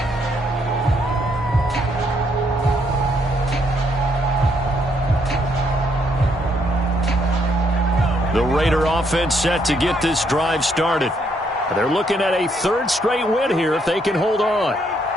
The Raider offense set to get this drive started. They're looking at a 3rd straight win here if they can hold on.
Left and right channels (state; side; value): normal; both; correlation 0.72